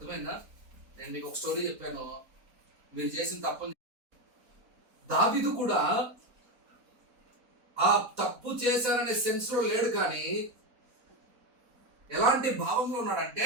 నేను మీకు ఒక స్టోరీ చెప్పాను, మీరు చేసిన తప్పు. దావీదు కూడా ఆ తప్పు చేశారనే సెన్స్ లో లేడు, కానీ ఎలాంటి భావంలో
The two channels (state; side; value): late; left; 4.1 ms